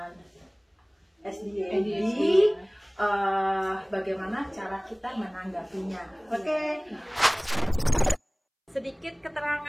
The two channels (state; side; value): identical; both; correlation 1.00